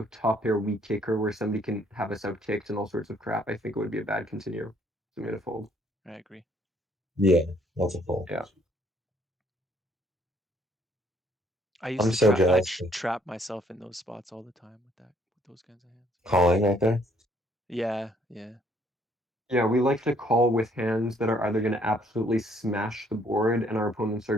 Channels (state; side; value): normal; both; correlation 0.65